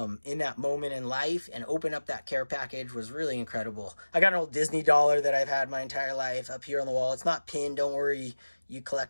in that moment in life and open up that care package. Was really incredible. I got an old Disney dollar that I've had my entire life up here on the wall. It's not pinned, don't worry, you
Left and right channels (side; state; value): both; inverted; correlation -1.00